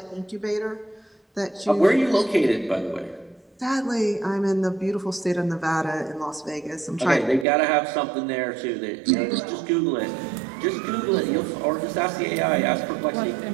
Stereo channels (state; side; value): drops out; left; at 7.5 s